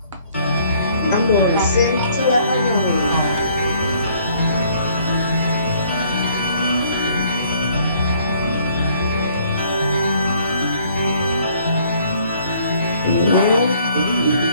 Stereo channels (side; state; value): both; inverted; correlation -0.61